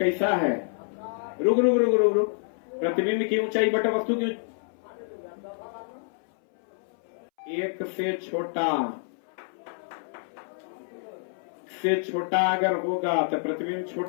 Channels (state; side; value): silent; right; 60 dB below the other